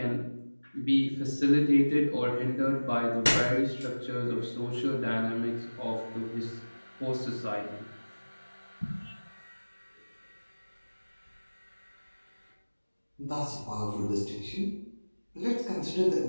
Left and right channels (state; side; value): inverted; both; correlation -1.00